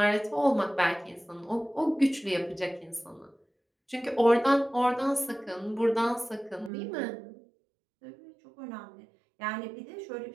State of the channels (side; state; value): left; drops out; at 6.7 s